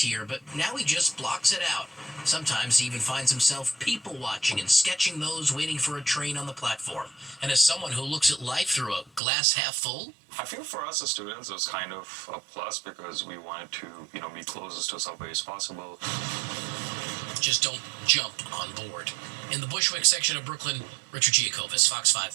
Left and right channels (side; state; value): left; drops out; at 9.2 s